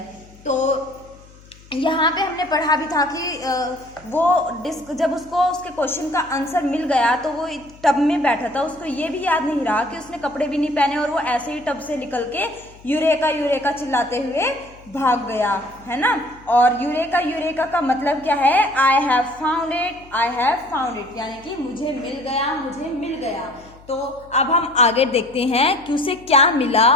तो यहाँ पे हमने पढ़ा भी था कि वो जब उसको उसके क्वेश्चन का आंसर मिल गया तो वो टब में बैठा था, उसको ये भी याद नहीं रहा कि उसने कपड़े भी नहीं पहने और वो ऐसे ही टब से निकल के यूरेका यूरेका चिल्लाते हुए भाग गया, है ना। और यूरेका यूरेका का मतलब क्या है, आई have found it, I have found it, यानी कि मुझे मिल गया, मुझे मिल गया। तो अब हम आगे देखते हैं कि उसे क्या मिला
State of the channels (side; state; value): left; noise; hum, 24 dB below the sound